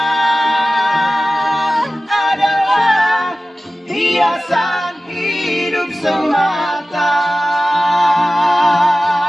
adalah hiasan hidup semata.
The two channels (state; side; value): normal; both; correlation 0.96